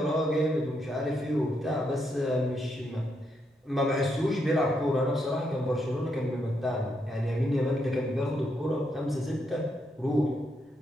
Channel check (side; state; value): both; normal; correlation 0.79